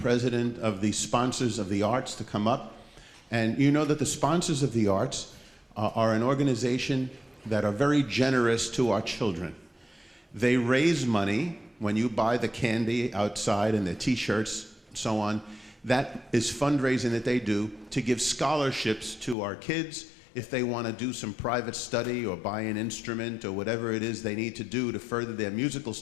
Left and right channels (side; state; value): right; drops out; at 19.4 s